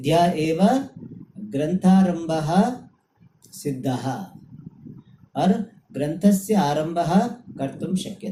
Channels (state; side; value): identical; both; correlation 1.00